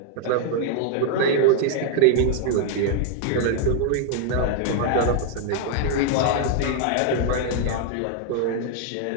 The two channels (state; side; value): different; both; correlation 0.00